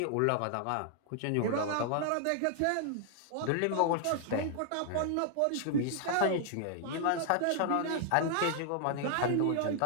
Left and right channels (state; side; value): different; both; correlation 0.00